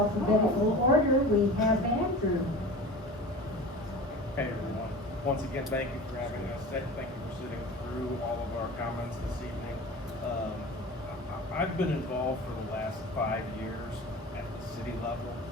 order, we have Andrew. Hey everyone. Once again, thank you for having us. Thank you for sitting through all of our comments this evening. I've been involved for the last 5 years at the city level.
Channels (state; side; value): normal; both; correlation 0.35